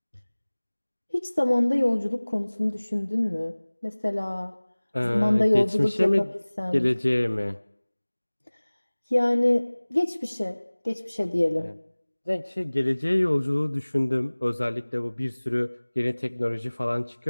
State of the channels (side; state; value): both; inverted; correlation -1.00